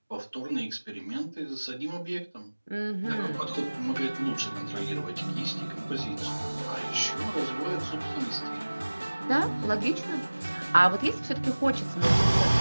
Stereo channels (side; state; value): both; inverted; correlation -1.00